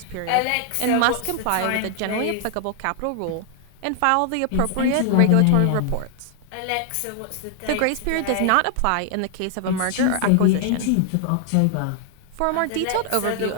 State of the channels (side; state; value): both; different; correlation 0.00